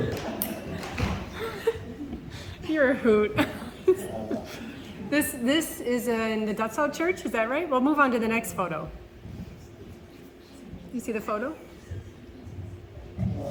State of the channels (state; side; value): identical; both; correlation 1.00